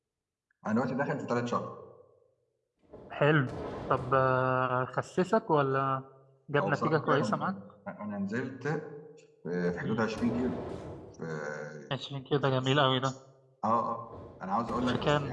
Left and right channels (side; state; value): both; identical; correlation 1.00